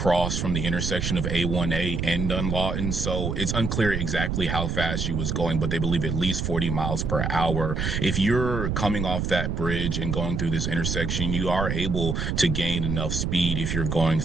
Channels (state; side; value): noise; right; rumble, 1 dB below the sound